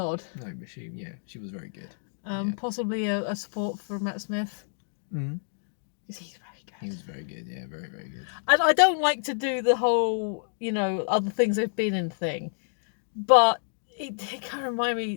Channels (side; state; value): right; silent; digital silence